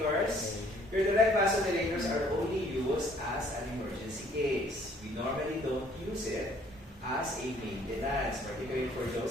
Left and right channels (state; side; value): normal; both; correlation 0.59